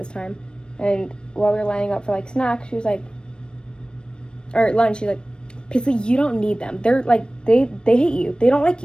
time. And while we were lining up for, like, snacks, she was like, or lunch, she's like, Paisley, you don't need them. They're, like, they hate you. They don't like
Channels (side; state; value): right; late; 0.053 ms